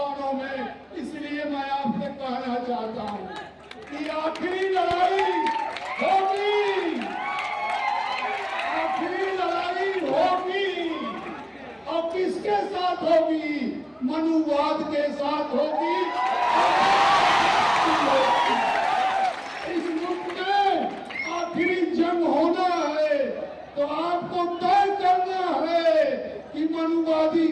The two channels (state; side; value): identical; both; correlation 1.00